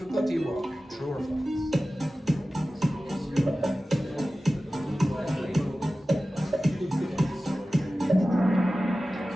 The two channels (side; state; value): both; normal; correlation 0.95